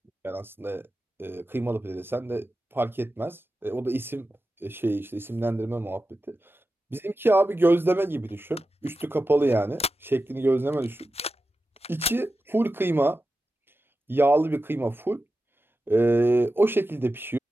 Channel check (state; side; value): normal; both; correlation 0.92